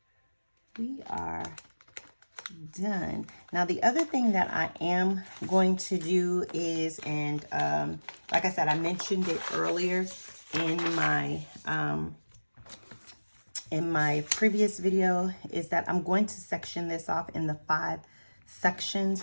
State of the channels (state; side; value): inverted; both; correlation -1.00